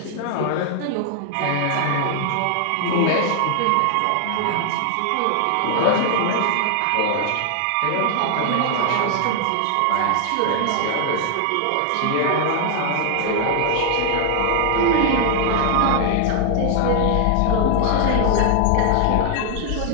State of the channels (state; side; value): different; both; correlation 0.00